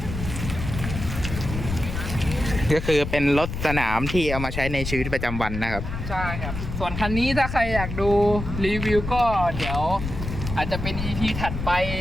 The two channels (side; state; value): left; noise; rumble, 6 dB below the sound